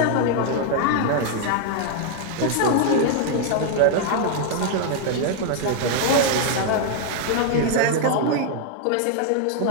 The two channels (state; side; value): different; both; correlation 0.00